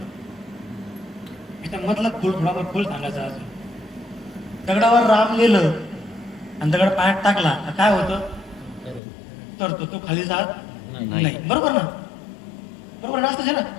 याच्यामधला खोल सांगायचा असेल. दगडावर राम लिहिलं आणि दगड पायात टाकला तर काय होतं? तरतो. तो खाली जात नाही. बरोबर ना? बरोबर असतं ना?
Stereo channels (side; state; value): right; drops out; at 9.0 s